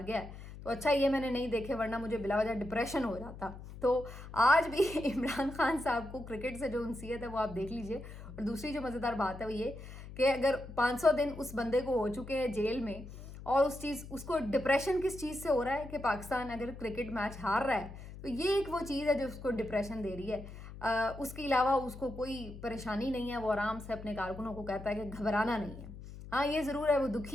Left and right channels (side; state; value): left; noise; hum, 13 dB below the sound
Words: गया है, तो अच्छा ये मैंने नहीं देखे, वरना मुझे बिला वजह डिप्रेशन हो जाता। तो आज भी इमरान खान साहब को क्रिकेट से जो उनसीयत है वो आप देख लीजिए। और दूसरी जो मज़ेदार बात है वो ये कि अगर 500 दिन उस बंदे को हो चुके हैं जेल में, और उसको डिप्रेशन किस चीज़ से हो रहा है कि पाकिस्तान अगर क्रिकेट मैच हार रहा है, तो ये एक वो चीज़ है जो उसको डिप्रेशन दे रही है। उसके अलावा उसको कोई परेशानी नहीं है, वो आराम से अपने कारकुनों को कहता है कि घबराना नहीं है। हाँ ये ज़रूर है वो दुखी